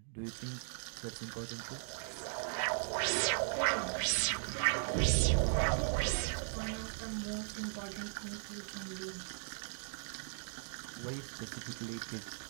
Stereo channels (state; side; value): silent; left; digital silence